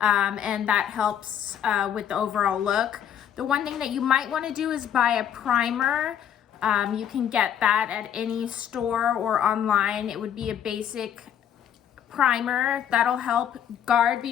and that helps with the overall look. The one thing that you might wanna do is buy a primer. You can get that at any store or online. It would be a basic primer that'll help guard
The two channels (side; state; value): right; quieter; 9.5 dB